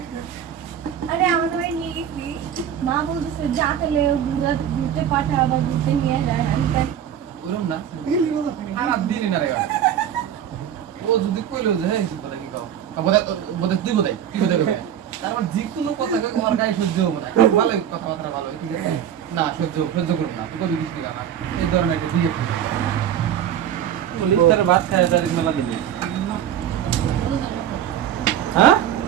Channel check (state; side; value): quieter; left; 9.8 dB